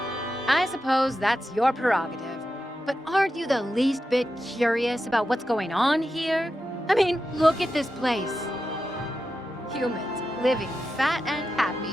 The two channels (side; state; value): both; normal; correlation 0.90